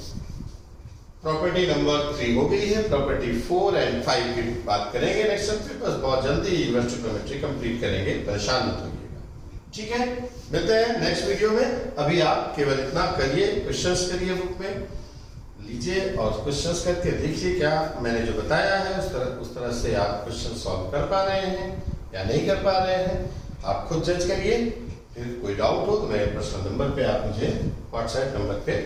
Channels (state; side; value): identical; both; correlation 1.00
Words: प्रॉपर्टी नंबर 3 हो गई है, प्रॉपर्टी 4 एंड 5 की बात करेंगे नेक्स्ट टाइम। बस बहुत जल्दी इन्वर्स ट्रिग्नोमेट्री कंप्लीट करेंगे, परेशान मत होइएगा, ठीक है? मिलते हैं नेक्स्ट वीडियो में। अभी आप केवल इतना करिए, क्वेश्चंस करिए, बुक में लीजिए और क्वेश्चंस करके देखिए क्या मैंने जो बताया है उस तरह से आप क्वेश्चन सॉल्व कर पा रहे हैं या नहीं कर पा रहे हैं, आप खुद जज करिए। फिर कोई डाउट हो तो मेरे पर्सनल नंबर पे आप मुझे व्हाट्सएप नंबर पे